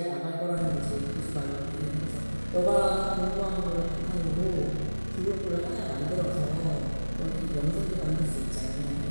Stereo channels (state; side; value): inverted; both; correlation -1.00